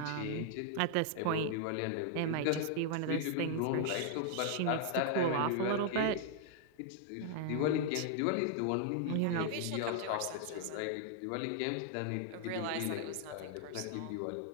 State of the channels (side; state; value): both; different; correlation 0.00